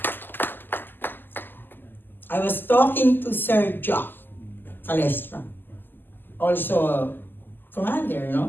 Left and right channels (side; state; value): right; late; 0.092 ms